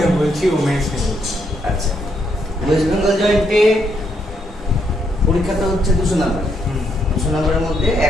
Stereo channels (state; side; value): normal; both; correlation 0.76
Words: বলছি, ও মেন্স নিয়ে বলছি। আচ্ছা, ওয়েস্ট বেঙ্গল জয়েন্টে পরীক্ষাটা হচ্ছে 200 নাম্বার। 200 নাম্বারের মধ্যে